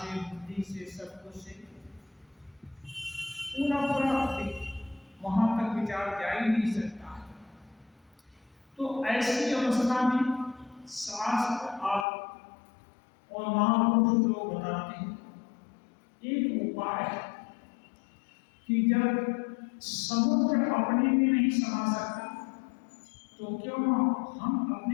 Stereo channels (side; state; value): right; drops out; at 12.1 s